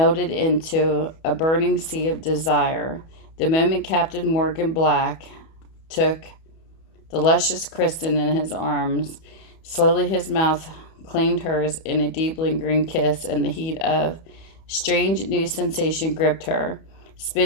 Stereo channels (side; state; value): right; late; 31 ms